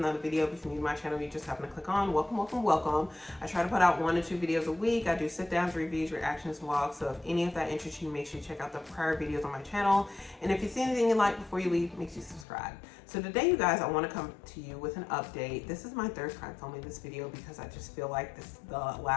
video. If you're new to my channel, you just happen to click on. Welcome. I try to put out 1 to 2 videos a week. I do sit downs, reviews, reactions, vlogs. So if any of that interests you, make sure you check out the prior videos on my channel. And if you see anything you like before you leave, make sure you subscribe. So today, you guys, I want to come to you with an update. This is my third time filming this video because I just feel like the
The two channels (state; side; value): drops out; right; at 12.5 s